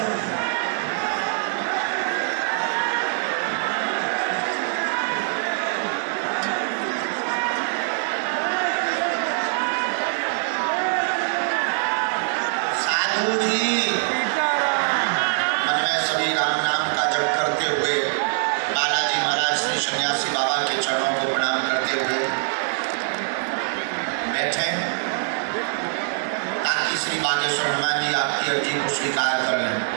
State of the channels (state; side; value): silent; left; 63 dB below the other